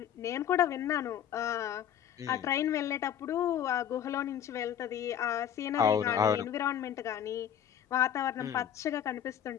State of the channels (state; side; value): quieter; right; 9.6 dB